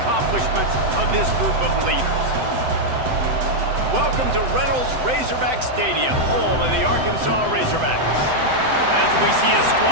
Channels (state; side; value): late; left; 7.8 ms